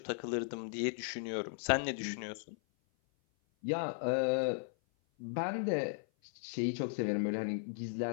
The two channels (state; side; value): silent; right; 53 dB below the other